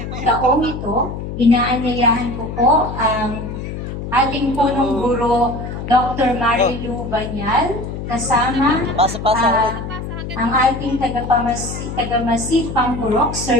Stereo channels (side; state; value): left; noise; hum, 7 dB below the sound